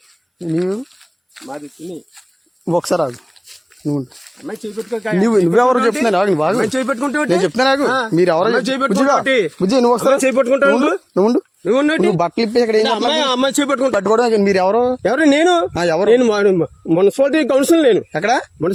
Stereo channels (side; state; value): both; identical; correlation 1.00